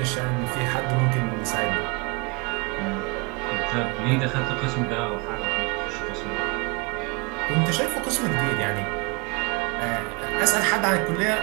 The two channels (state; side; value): quieter; left; 28.3 dB